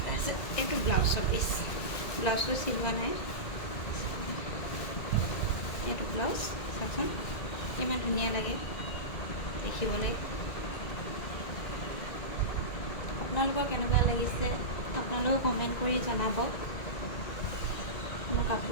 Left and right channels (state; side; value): late; right; 2.2 ms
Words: তাৰপিছত এইটো ব্লাউজৰ পিচ, ব্লাউজটো চিলোৱা নাই। এইটো ব্লাউজ চাওকচোন ইমান ধুনীয়া লাগে দেখিবলৈ। আপোনালোকৰ কেনেকুৱা লাগিছে আপোনালোকেও কমেণ্ট কৰি জনাব। মোৰ